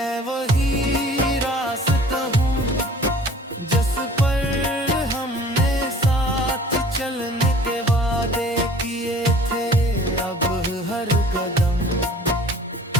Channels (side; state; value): both; normal; correlation 0.49